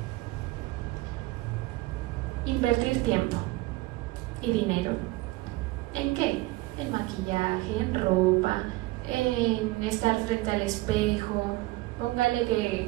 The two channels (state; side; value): quieter; left; 19.8 dB